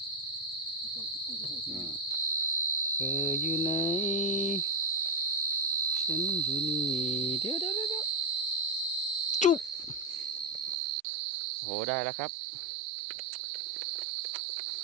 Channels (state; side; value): drops out; left; at 10.8 s